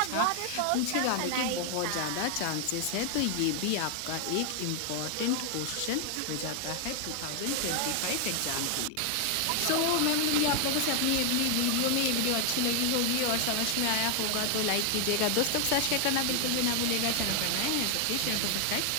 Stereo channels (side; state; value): both; different; correlation 0.00